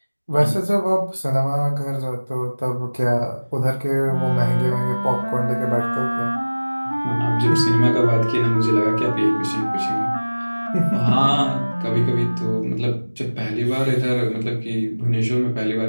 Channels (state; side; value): inverted; both; correlation -1.00